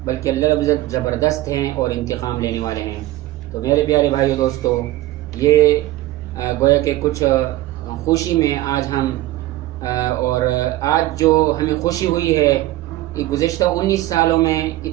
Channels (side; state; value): left; quieter; 16.5 dB